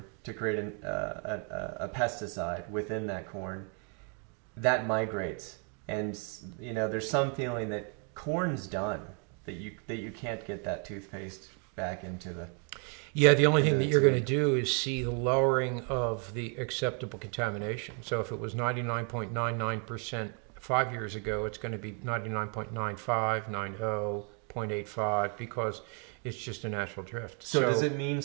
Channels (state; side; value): quieter; left; 38.9 dB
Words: to create a pesticide within that corn, that migrates. And there's some feeling that corn's done, that you can't get that toothpaste back into the... Yeah, the only thing that you're going to do is see the lowering of the acceptable contamination. So if it was 99.99% 5 years ago, it's going to be 99.95, 90, 0.85, because it's just a natural drift. So does it mean